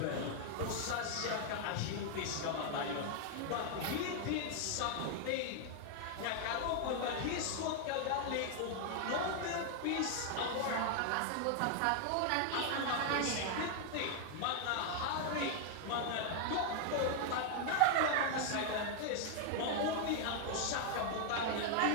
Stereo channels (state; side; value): different; both; correlation 0.00